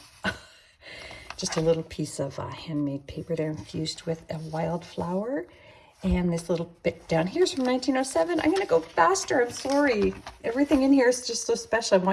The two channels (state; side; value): identical; both; correlation 1.00